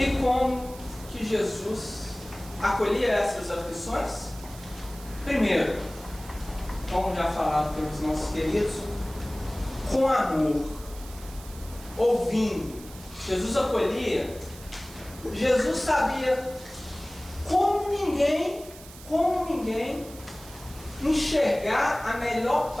como que Jesus acolhia essas aflições? Primeiro, como já falado pelos nossos queridos, com amor, ouvindo. Jesus acolhia, Jesus sabia como ninguém enxergar a melhor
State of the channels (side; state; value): right; noise; hiss, 18 dB below the sound